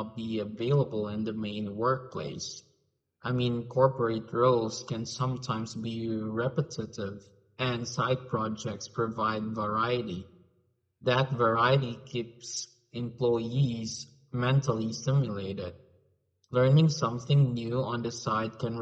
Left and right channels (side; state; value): both; identical; correlation 1.00